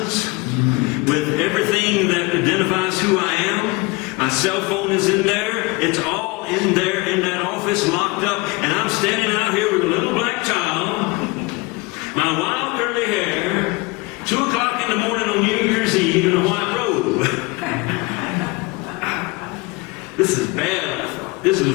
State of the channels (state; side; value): quieter; right; 24.7 dB